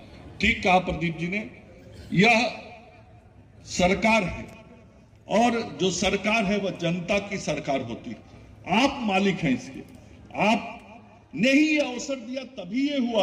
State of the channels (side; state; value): both; identical; correlation 1.00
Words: ठीक कहा प्रदीप जी ने, यह सरकार है, और जो सरकार है वह जनता की सरकार होती है। आप मालिक हैं इसके, आपने ही ये अवसर दिया तभी ये